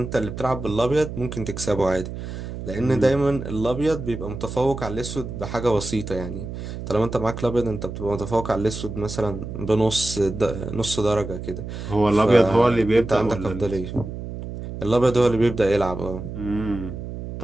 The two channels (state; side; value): noise; right; hum, 8 dB below the sound